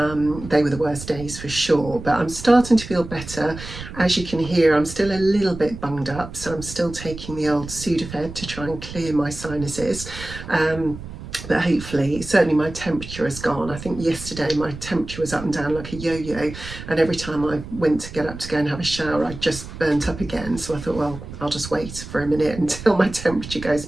They were the worst days for sure, but I'm starting to feel better. As you can hear, I'm still a little bit bunged up, so I'm still taking the old Sudafed to try and clear my sinuses. But hopefully, certainly my temperature has gone. I think yesterday my temperature was up and down like a yo-yo, and every time I went to get up to go and have a shower I just burnt up again. So I thought, well, I'll just wait for a minute until my temperature goes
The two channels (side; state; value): right; noise; rumble, 12 dB below the sound